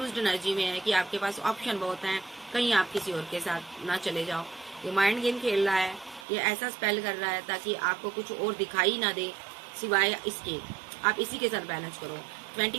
एनर्जी में है कि आपके पास ऑप्शन बहुत हैं, कहीं आप किसी और के साथ ना चले जाओ। ये माइंड गेम खेल रहा है, ये ऐसा स्पेल कर रहा है ताकि आपको कुछ और दिखाई ना दे सिवाय इसके, आप इसी के साथ बैलेंस करो।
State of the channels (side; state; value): left; drops out; at 6.2 s